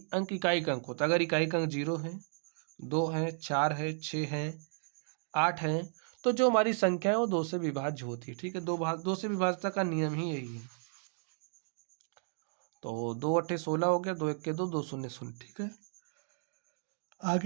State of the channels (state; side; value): silent; left; digital silence